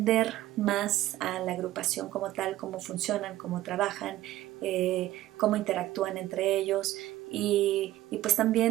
más a la agrupación como tal, cómo funcionan, cómo trabajan, cómo interactúan entre ellos y pues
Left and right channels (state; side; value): quieter; left; 15.1 dB